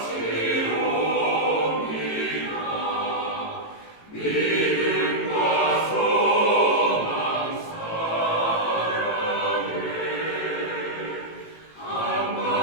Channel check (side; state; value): right; late; 18 ms